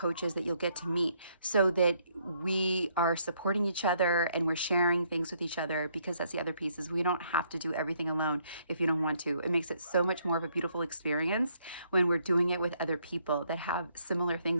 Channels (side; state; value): both; inverted; correlation -0.70